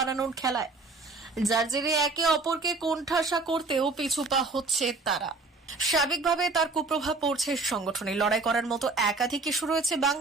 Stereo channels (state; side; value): quieter; left; 3.7 dB